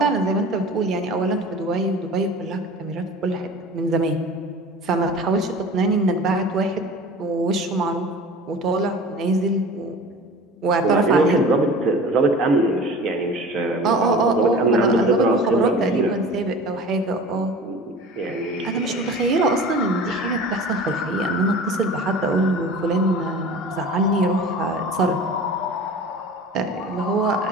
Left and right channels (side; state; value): both; normal; correlation 0.39